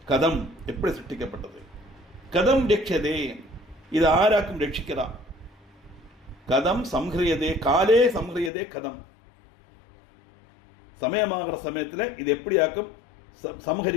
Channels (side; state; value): right; drops out; at 8.5 s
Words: கதம் எப்படி சிருஷ்டிக்கப்பட்டது? கதம் ரட்சதே, இது ஆராக்கும் ரட்சிக்கிறா? கதம் சம்ஹரியதே, காலே சம்ஹரியதே கதம், சமயமாகிற சமயத்தில் இது எப்படியாக்கும்